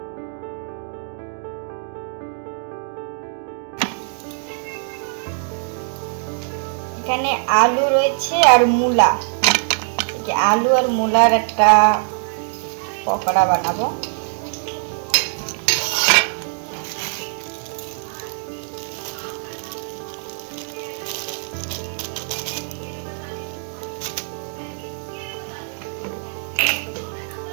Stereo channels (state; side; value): silent; left; 64 dB below the other